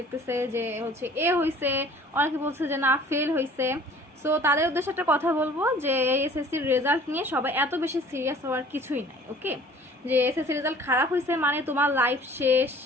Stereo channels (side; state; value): both; normal; correlation 0.50